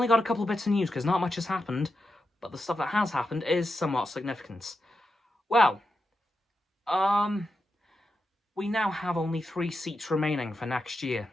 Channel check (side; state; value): both; normal; correlation 0.88